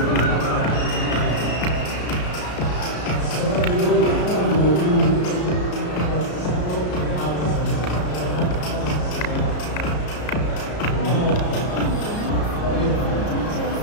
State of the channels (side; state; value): right; late; 33 ms